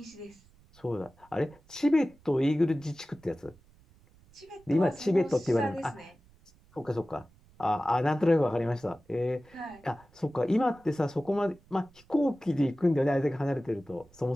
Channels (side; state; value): right; noise; rumble, 28 dB below the sound